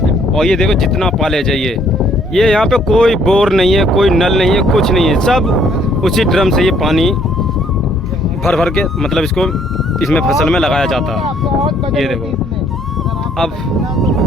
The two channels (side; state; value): both; normal; correlation 0.64